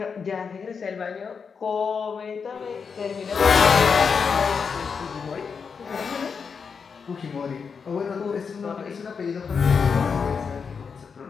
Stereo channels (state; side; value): quieter; right; 5.8 dB